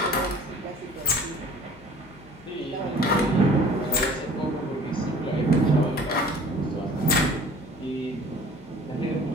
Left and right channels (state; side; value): normal; both; correlation 0.48